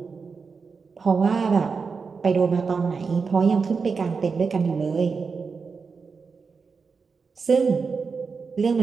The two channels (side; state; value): left; quieter; 5.1 dB